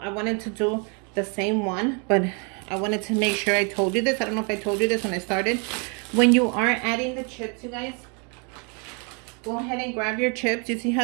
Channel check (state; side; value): quieter; left; 35.5 dB